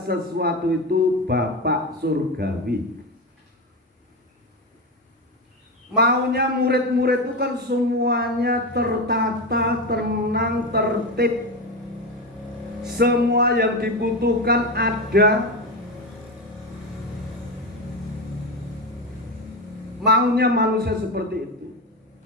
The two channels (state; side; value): normal; both; correlation 0.17